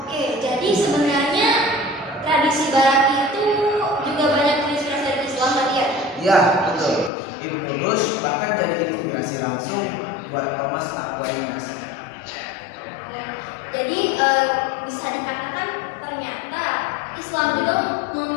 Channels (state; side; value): drops out; right; at 7.1 s